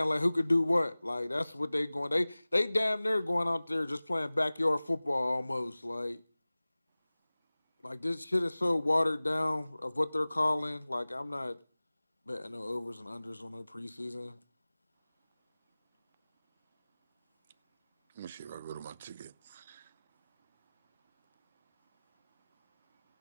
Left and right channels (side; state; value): both; inverted; correlation -0.99